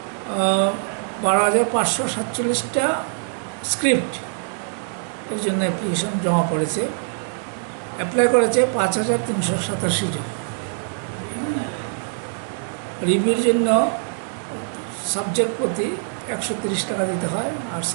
স্ক্রিপ্ট এর জন্য অ্যাপ্লিকেশন জমা পড়েছে। অ্যাপ্লাই করেছে 5,387 জন। রিভিউর জন্য সাবজেক্ট প্রতি 130 টাকা দিতে হয়, আর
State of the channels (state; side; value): silent; left; 63 dB below the other